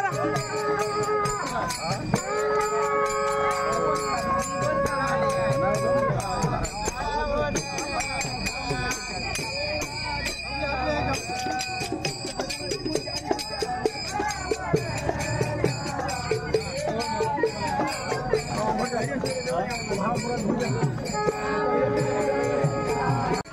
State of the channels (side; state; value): both; identical; correlation 1.00